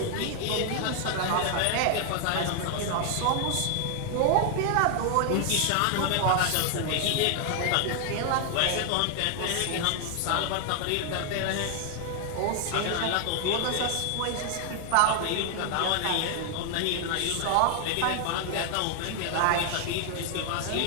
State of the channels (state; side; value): different; both; correlation 0.00